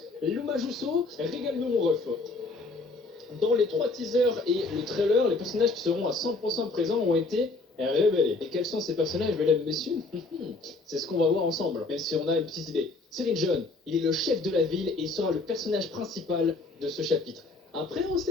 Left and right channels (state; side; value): quieter; right; 3.4 dB